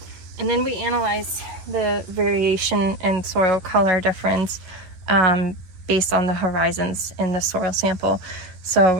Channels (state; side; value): late; left; 10 ms